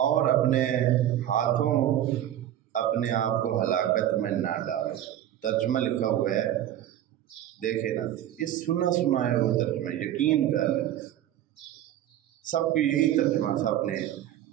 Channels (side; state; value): left; quieter; 11.9 dB